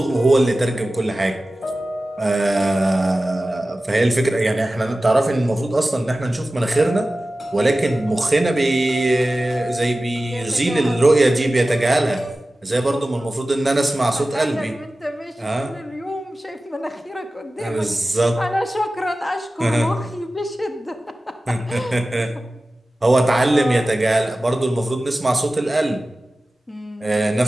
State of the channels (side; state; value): both; normal; correlation 0.96